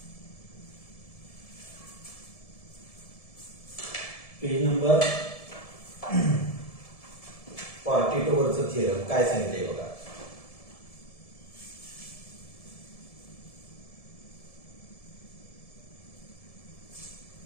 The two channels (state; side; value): late; right; 1.7 ms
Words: पेज नंबर 42 वरचं थिअरम काय सांगितलंय बघा.